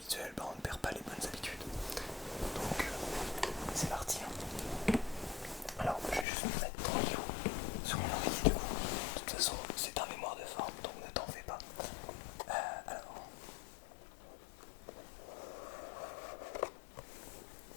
bah on ne perd pas les bonnes habitudes. Donc, c'est parti. Hein. Alors, je vais juste me mettre tranquille sur mon oreiller du coup. De toute façon, c'est un mémoire de forme, donc ne t'en fais pas. Alors.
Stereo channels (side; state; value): right; drops out; at 6.2 s